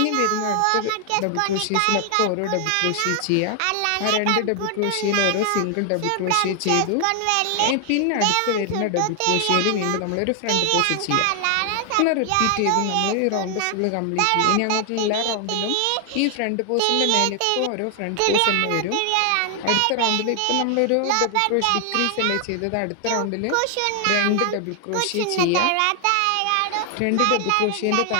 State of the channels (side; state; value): both; different; correlation 0.00